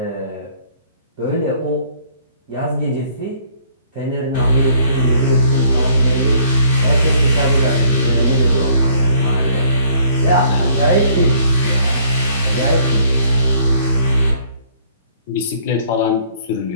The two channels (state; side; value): inverted; both; correlation -0.59